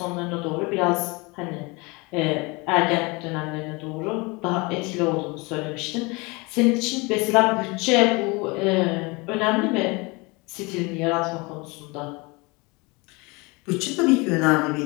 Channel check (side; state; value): right; quieter; 26.6 dB